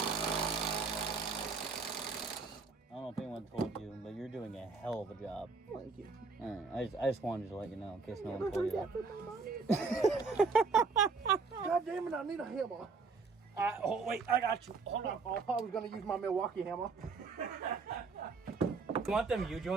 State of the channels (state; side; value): quieter; left; 4.5 dB